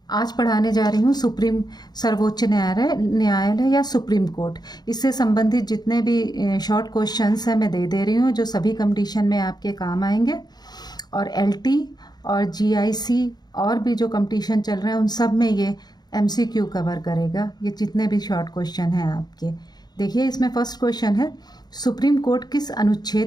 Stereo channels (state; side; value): late; right; 0.20 ms